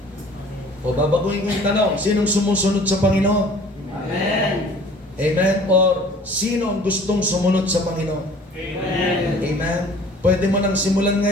O babaguhin ko yung tanong, sinong sumusunod sa Panginoon? Amen. Amen? Or sino ang gustong sumunod sa Panginoon? Amen. Amen? Pwede mo nang simulan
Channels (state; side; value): normal; both; correlation 0.49